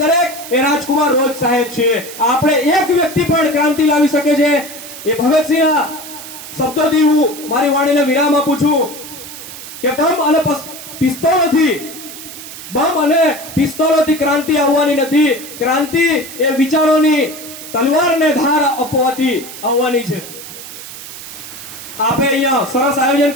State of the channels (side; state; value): right; noise; hiss, 13 dB below the sound